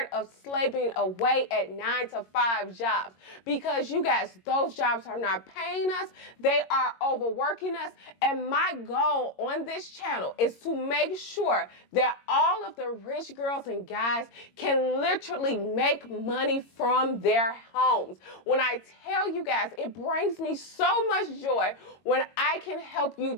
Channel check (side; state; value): right; late; 22 ms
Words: of slaving away at 9-to-5 jobs, because you guys, those jobs are not paying us, they are overworking us, and my goal on this channel is to make sure that all of the rich girls and guys can literally make money from their homes. When I tell you guys, it brings me so much joy when I can help you